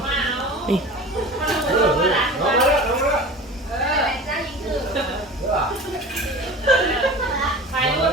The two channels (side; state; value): both; normal; correlation 0.36